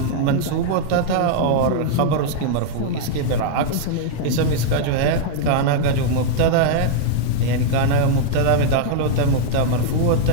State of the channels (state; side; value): different; both; correlation -0.01